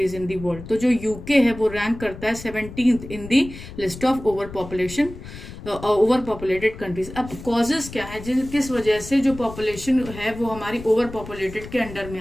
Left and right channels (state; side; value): noise; left; rumble, 13 dB below the sound